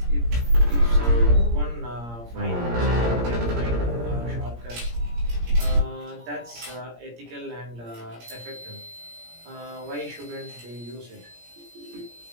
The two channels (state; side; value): late; left; 17 ms